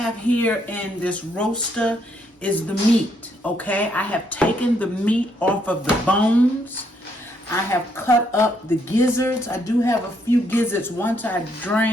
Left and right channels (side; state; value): both; normal; correlation 0.73